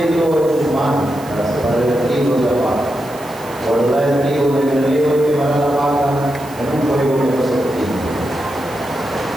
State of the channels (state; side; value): noise; right; hiss, 20 dB below the sound